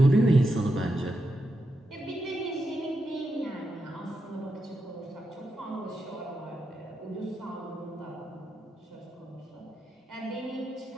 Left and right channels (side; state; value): both; normal; correlation 0.86